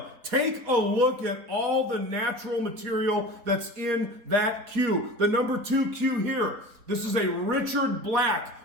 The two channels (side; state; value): left; late; 4.2 ms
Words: Take a look at all the natural material that's in that cue. The number 2 cue here, this is a Richard Black